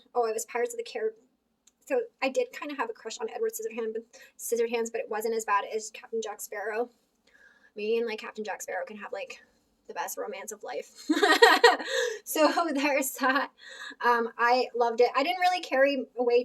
I was Pirates of the Caribbean. So I did kind of have a crush on Edward Scissorhands, but it wasn't as bad as Captain Jack Sparrow. Me and like Captain Jack Sparrow can have like the best romance of life. So there's that. I loved it. I didn't really carry away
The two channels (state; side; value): identical; both; correlation 1.00